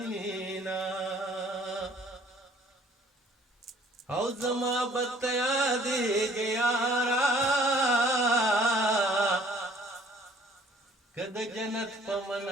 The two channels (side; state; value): both; normal; correlation 0.56